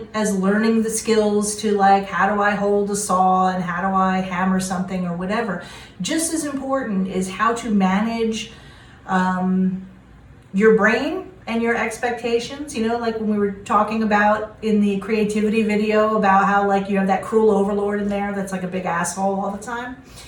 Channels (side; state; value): both; identical; correlation 1.00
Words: as learning the skills to how do I hold a saw and how do I hammer something or whatever, just as important is how to manage your brain and your expectations, like when we were talking about in the creativity video about how you have that cruel overlord in there that's like a big asshole all the time.